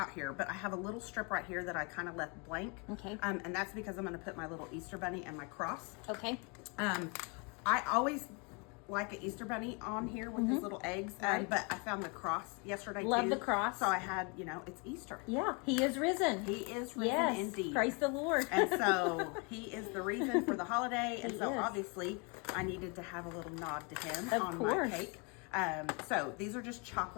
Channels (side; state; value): right; quieter; 32.8 dB